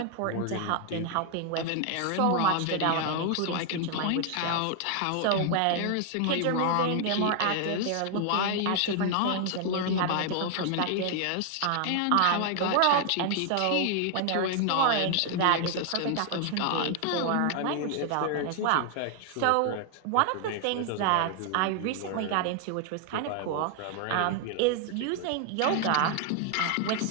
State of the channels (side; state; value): both; different; correlation 0.00